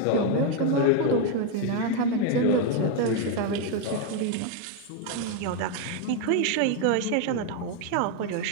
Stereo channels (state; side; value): different; both; correlation 0.02